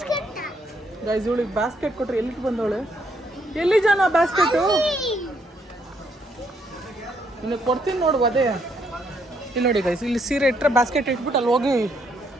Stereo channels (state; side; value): normal; both; correlation 0.72